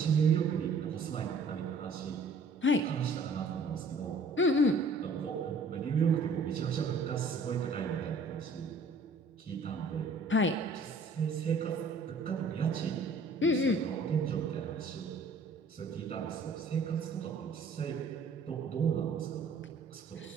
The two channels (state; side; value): quieter; left; 3.3 dB